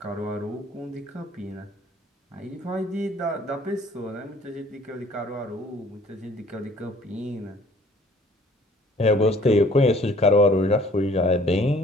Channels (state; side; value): normal; both; correlation 0.55